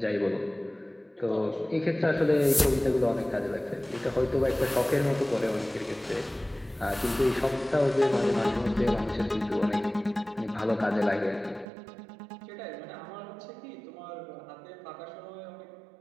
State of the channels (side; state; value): left; drops out; at 11.7 s